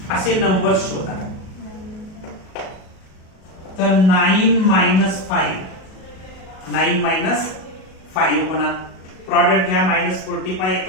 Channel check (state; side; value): late; right; 37 ms